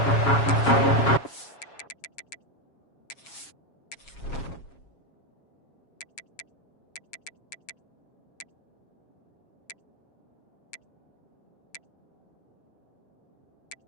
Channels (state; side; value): late; right; 7.3 ms